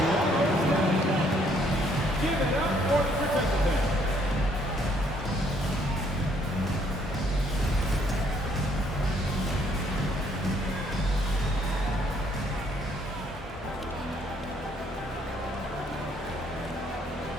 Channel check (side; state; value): both; normal; correlation 0.66